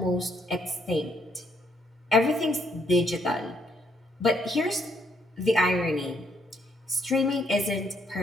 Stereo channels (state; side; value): normal; both; correlation 0.71